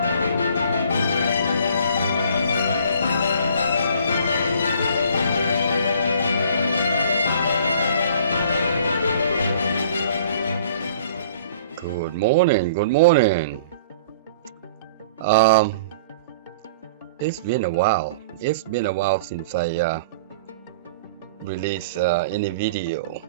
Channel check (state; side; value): inverted; both; correlation -0.50